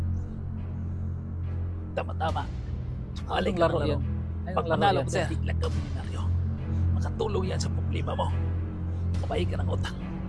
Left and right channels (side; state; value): both; identical; correlation 1.00